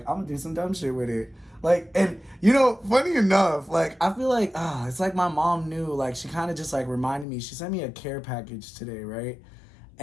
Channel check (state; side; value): drops out; right; at 7.2 s